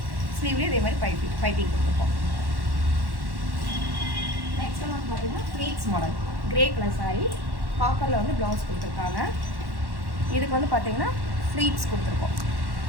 ஸ்லீவ்லேயும் இதே மாதிரி பைப்பிங் கொடுத்துருக்கோம். நெக்ஸ்ட் வந்து பார்த்தீங்கன்னா pleats model grey colour sari, காப்பரில் வந்து ப்ளவுஸ் கொடுத்துருக்காங்க. இதுக்கு வந்து பார்த்தீங்கன்னா ஃப்ளீட்ஸ் கொடுத்துருக்கோம்.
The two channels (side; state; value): left; late; 1.1 ms